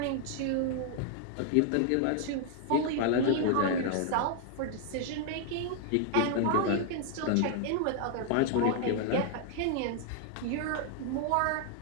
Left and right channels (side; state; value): both; different; correlation 0.00